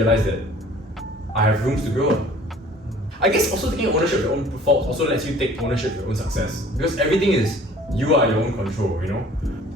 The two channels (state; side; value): normal; both; correlation 0.51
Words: that I have rooms to grow. I guess also taking ownership of your own faults also lets you take ownership of your own success. Because everything is, you are your own control, you know?